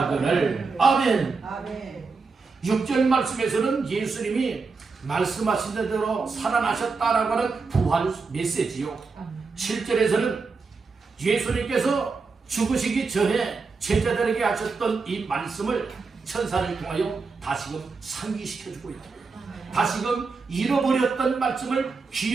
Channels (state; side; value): quieter; left; 4.5 dB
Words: 아멘. 아멘. 6절 말씀에서는 예수님이 말씀하신 대로 살아나셨다라고 하는 부활 메시지요. 7절에서는 예수님께서 죽으시기 전에 제자들에게 하셨던 이 말씀을 천사를 통하여 다시금 상기시켜주고 있다. 다시금 잃어버렸던 말씀을